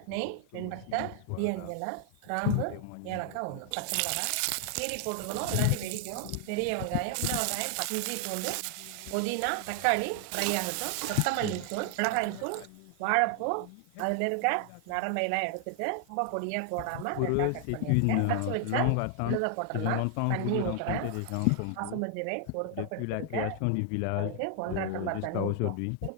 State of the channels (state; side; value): different; both; correlation 0.00